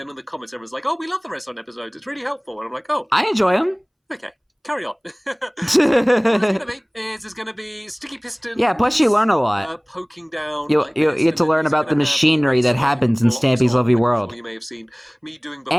in the comments, everyone's like, oh, we love the redstone episodes. It's really helpful. And I'm like, oh. I enjoy them. Okay. Carry on. There's going to be sticky pistons. Yeah, plus you learn a lot. Poking down. You get to learn about the machinery that happens in Stampy's lovely world. You may have seen me doing before.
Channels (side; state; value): both; identical; correlation 1.00